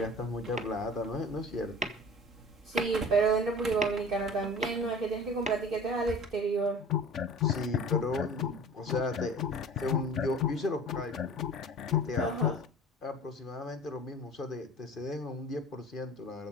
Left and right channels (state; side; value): normal; both; correlation 0.41